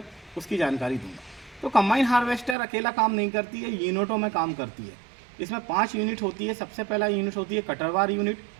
उसकी जानकारी दूंगा। तो कंबाइन हार्वेस्टर अकेला काम नहीं करती है, यूनिटों में काम करती है। इसमें 5 यूनिट होती है। सबसे पहला यूनिट होती है कटरवार यूनिट,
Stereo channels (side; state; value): left; drops out; at 2.6 s